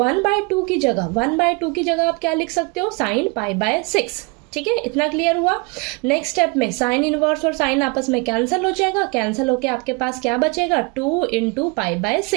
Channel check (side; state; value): left; quieter; 29.3 dB